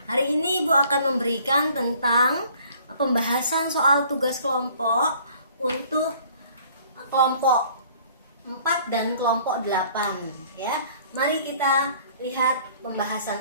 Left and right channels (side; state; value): both; inverted; correlation -0.55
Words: Hari ini Ibu akan memberikan tentang pembahasan soal tugas kelompok untuk kelompok 4 dan kelompok 8 ya. Mari kita lihat pembahasan